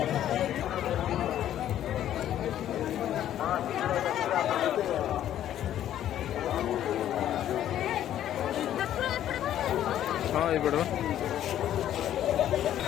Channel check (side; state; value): right; quieter; 11.5 dB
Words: हाँ, ये बड़ा